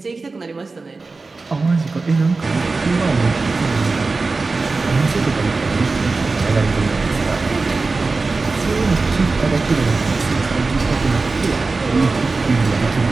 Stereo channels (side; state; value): left; quieter; 3.8 dB